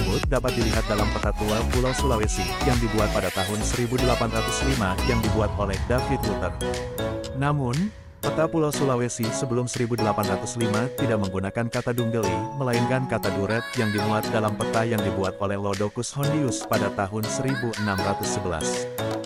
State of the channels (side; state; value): both; identical; correlation 1.00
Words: dapat dilihat dalam peta tua Pulau Sulawesi yang dibuat pada tahun 1805 yang dibuat oleh David Luther. Namun, peta Pulau Sulawesi sebelum 1805 tidak menggunakan kata Dunggeli, melainkan kata Duret yang dimuat dalam peta yang dibuat oleh Lodocus Hondius pada tahun 1611.